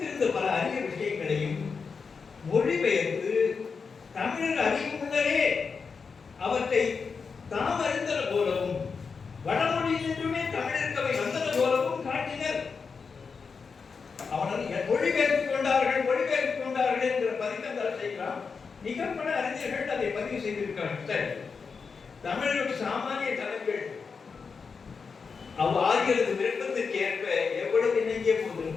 பல அரிய விஷயங்களையும் மொழிபெயர்த்து தமிழர் அறியும் முன்னரே அவற்றை தாம் அறிந்தன போலவும் வடமொழியிலிருந்துமே தமிழருக்கு அவை வந்தன போலவும் காட்டினர். அவர்கள் மொழிபெயர்த்துக் கொண்டார்கள் என்ற பதிக்கந்தால் செய்கிறான். மிக பல அறிஞர்கள் அதை பதிவு செய்திருக்கிறார்கள். தமிழர்கள் சாமானிய தலைகள் ஆகியது விருப்பத்திற்கு ஏற்ப எவ்வளவு இணங்கிய போது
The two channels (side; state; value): right; quieter; 5.3 dB